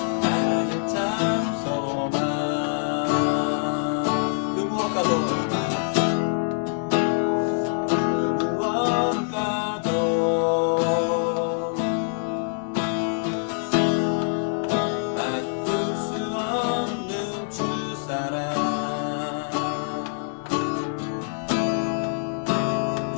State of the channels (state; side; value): silent; right; 62 dB below the other